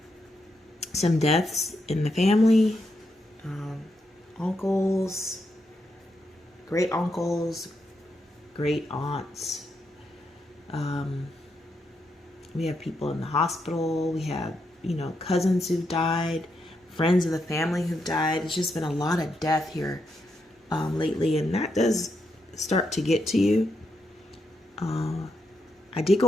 some deaths in the family, uncles, great uncles, great aunts. We have people in the hospital. We have, cousins who've died, friends of the family who've died. It's just been a lot of death here lately, and that does start to get to you. I did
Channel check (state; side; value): normal; both; correlation 0.82